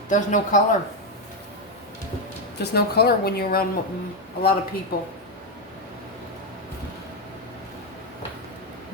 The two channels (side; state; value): both; normal; correlation 0.06